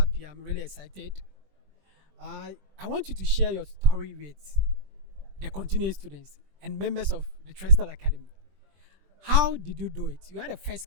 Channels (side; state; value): left; late; 20 ms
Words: I'm really excited. I want you to share your story with the continuing students and members of the Trestle Academy. How did you do it? You had a first